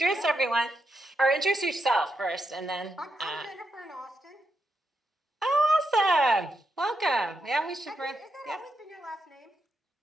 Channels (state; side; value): normal; both; correlation 0.83